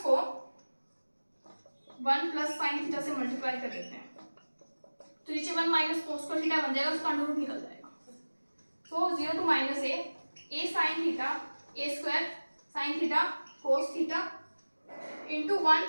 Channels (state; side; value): inverted; both; correlation -1.00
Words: 1 प्लस साइन थीटा से मल्टीप्लाई कर देते हैं तो नीचे 1 माइनस कोस का थीटा बन जाएगा, उसका अंडर रूट निकल जाएगा। So 0 to minus a sine theta a square sine theta cos theta into 1